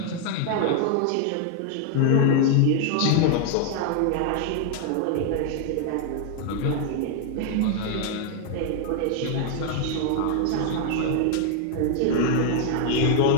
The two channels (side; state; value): both; different; correlation 0.00